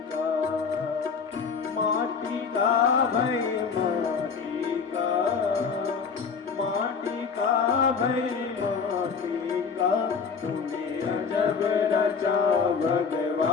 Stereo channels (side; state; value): right; quieter; 5.7 dB